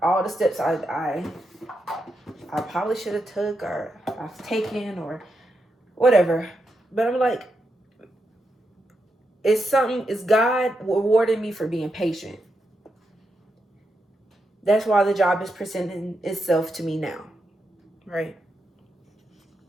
all the steps I probably should have took or I've taken or whatever. But I'm like, it's God rewarding me for being patient. That's why the job is presenting itself to me now, right?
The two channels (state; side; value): normal; both; correlation 0.84